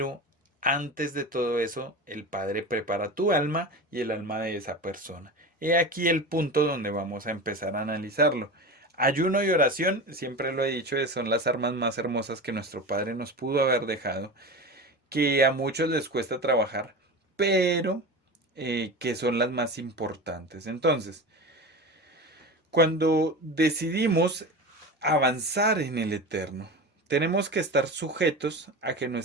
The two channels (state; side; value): normal; both; correlation 0.28